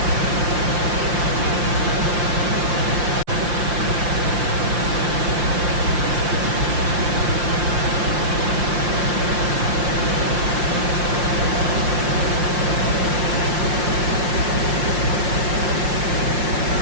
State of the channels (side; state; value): left; late; 5.7 ms